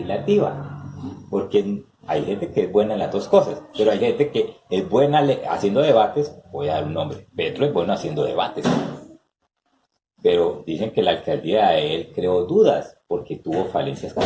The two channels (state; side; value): identical; both; correlation 1.00